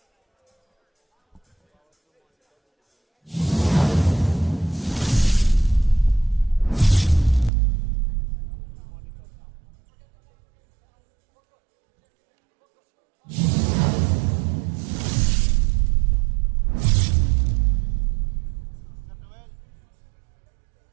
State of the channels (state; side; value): drops out; left; at 7.5 s